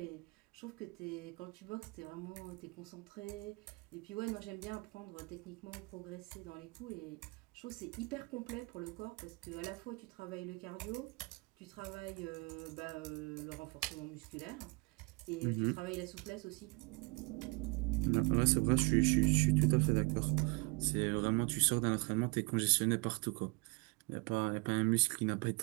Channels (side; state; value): left; quieter; 28.7 dB